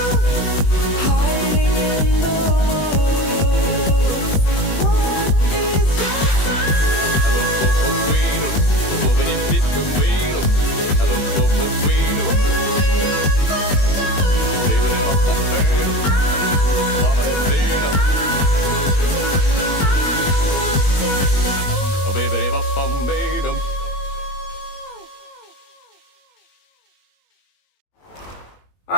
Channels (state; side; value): late; right; 21 ms